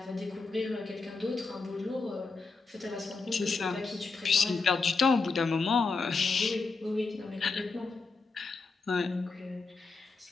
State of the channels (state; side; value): quieter; right; 4.2 dB